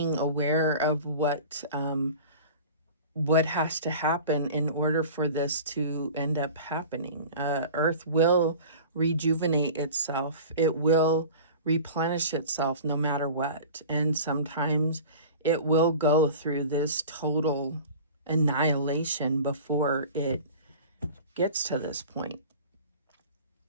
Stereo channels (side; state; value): both; inverted; correlation -0.39